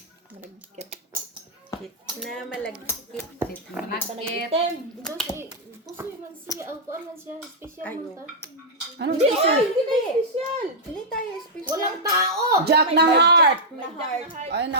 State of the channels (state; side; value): normal; both; correlation -0.08